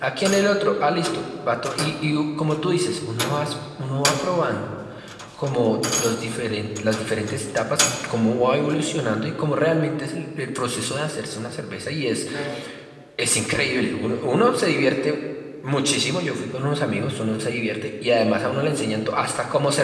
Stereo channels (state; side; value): identical; both; correlation 1.00